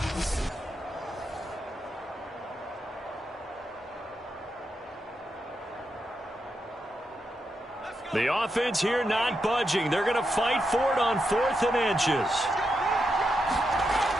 The offense here not budging. They're going to fight for it on 4th and inches.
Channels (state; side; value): normal; both; correlation 0.84